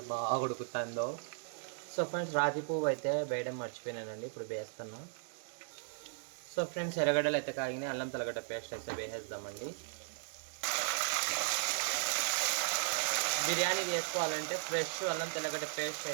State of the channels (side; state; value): left; silent; digital silence